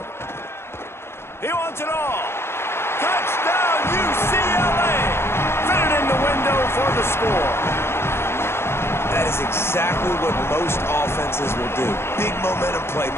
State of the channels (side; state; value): right; late; 0.12 ms